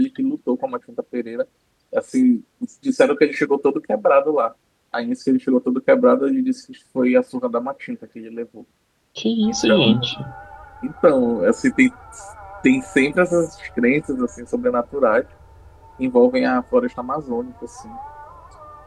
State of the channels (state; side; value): identical; both; correlation 1.00